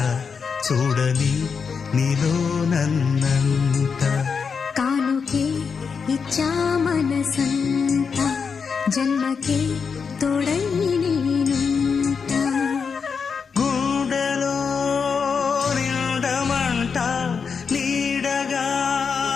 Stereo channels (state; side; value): quieter; right; 5.8 dB